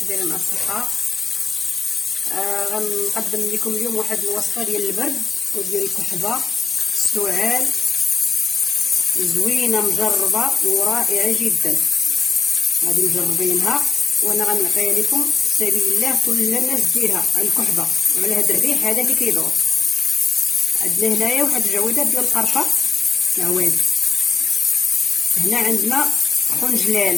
دايرين مع الصحة؟ غنقدم لكم اليوم واحد الوصفة ديال البرد وديال الكحبة السعال، زوينة مجربة ورائعة جدا. غادي مجربينها وانا غنعطيها لكم سبيل الله كل الناس ديرها على الكحبة وعلى هذا الريح هذا اللي كيدور. عندنا هنايا واحد الجويدات ديال القرفة عواد. هنا عندنا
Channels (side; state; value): right; quieter; 5.0 dB